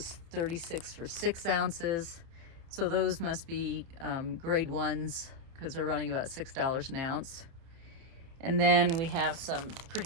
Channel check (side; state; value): left; late; 30 ms